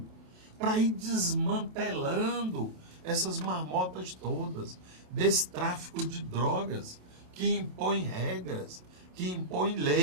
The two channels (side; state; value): left; late; 27 ms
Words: para ir desmantelando essas marmotas todas, desse tráfico de drogas, que impõe regras, que impõe